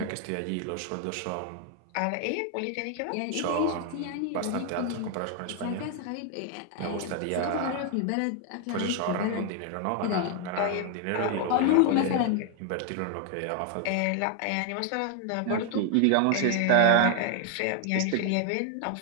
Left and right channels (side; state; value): both; different; correlation 0.00